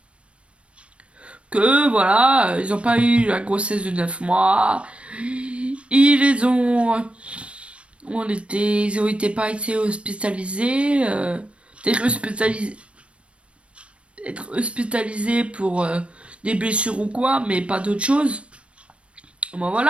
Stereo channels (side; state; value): left; late; 0.060 ms